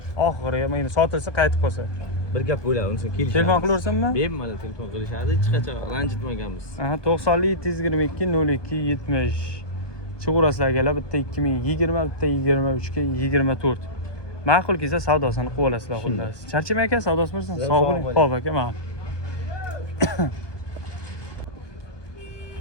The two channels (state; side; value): late; right; 1.2 ms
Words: Oxiriga mana sotilsa qaytib qolsa. Bir gap bo'ladi, unisi kelishadi. Telefon qilaversammi? Bemalol telefon qilishadi, hech qachon ranjitmaganmiz. Aha, 90 722 02 70. Chiqurasizlar akalar, bitta 2020, bitta 23 ga 24. Ma'qul kelsa savdosini qilib olasizlar xullas. Charchamay aka, savdosi bo'lsin. Sog' bo'ling. Xo'p aka, ma'qul.